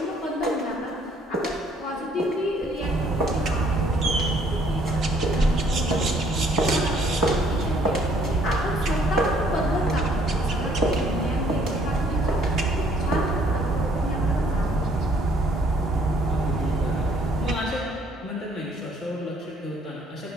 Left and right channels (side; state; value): both; normal; correlation 0.63